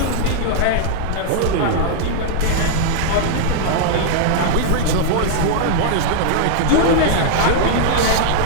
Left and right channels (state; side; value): different; both; correlation 0.00